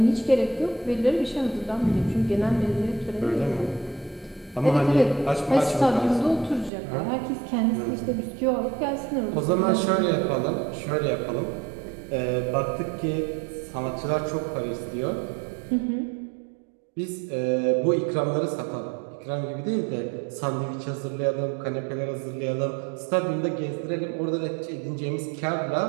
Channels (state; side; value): drops out; left; at 6.7 s